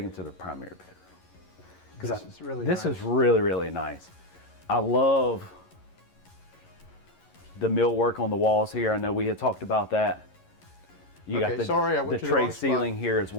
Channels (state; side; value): late; right; 11 ms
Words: them to the primary bedroom. This is really This nice. is really, really nice. I love the millwork on the walls here. I know we had talked about that. You Okay, got sorry, I the went to the tray wrong spot. ceiling here as